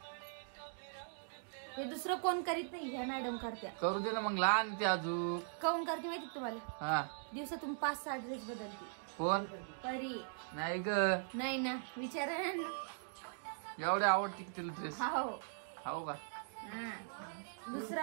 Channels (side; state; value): left; silent; digital silence